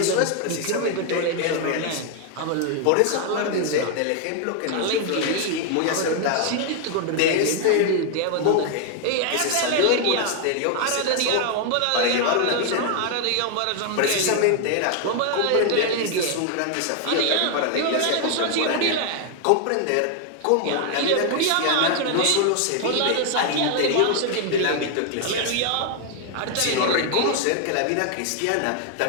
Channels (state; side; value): different; both; correlation 0.00